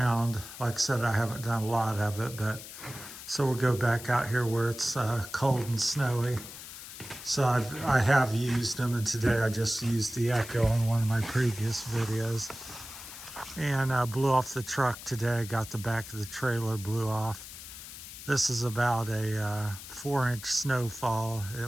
like I said, I haven't done a lot of it, but so we'll go back out here where it's cold and snowy. So I have used them, and today I just used the Echo on one of my previous videos. And blew off the truck today, got the back of the trailer blew off. This is about a 4-inch snowfall.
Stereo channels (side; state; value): left; noise; hiss, 13 dB below the sound